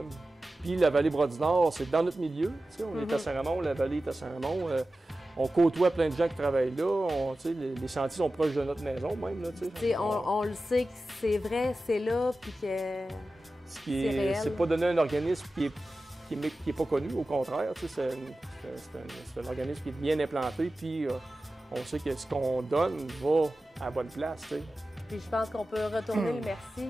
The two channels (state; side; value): normal; both; correlation 0.94